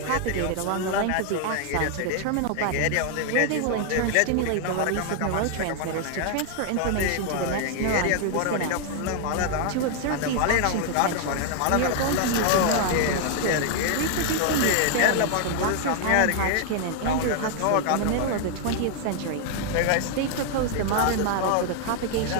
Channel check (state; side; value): different; both; correlation 0.00